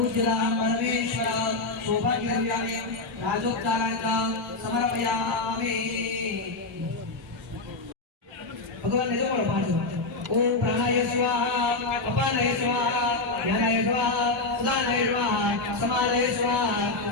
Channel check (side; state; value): right; quieter; 3.4 dB